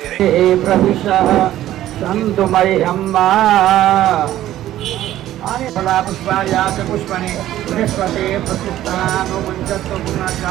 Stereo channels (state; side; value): quieter; left; 13.4 dB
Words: प्रविशः सन्तु मह्यम्मा फला पुष्पाया च पुष्पणे बृहस्पते प्रतिष्ठानुमुञ्चत्व